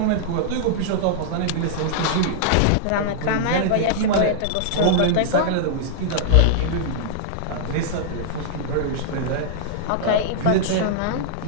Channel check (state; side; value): different; both; correlation -0.01